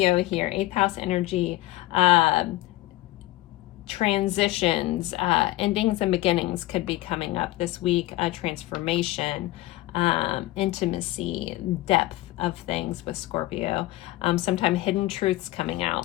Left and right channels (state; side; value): quieter; right; 17.7 dB